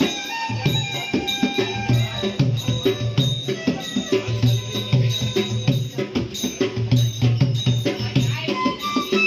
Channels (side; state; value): both; identical; correlation 1.00